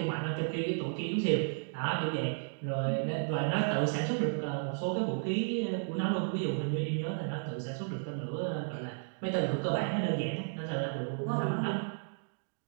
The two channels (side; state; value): left; silent; digital silence